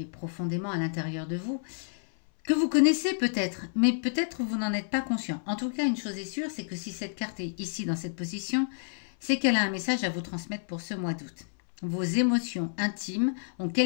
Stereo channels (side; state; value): right; silent; 56 dB below the other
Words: profondément à l'intérieur de vous, que vous connaissez peut-être, mais peut-être vous n'en êtes pas conscient. En tout cas, une chose est sûre, c'est que si cette carte est ici dans cette position, c'est qu'elle a un message à vous transmettre pour ce mois d'août. Vos émotions intimes ont